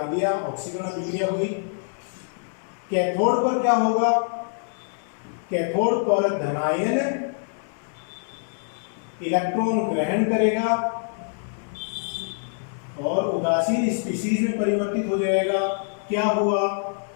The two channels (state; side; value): silent; right; digital silence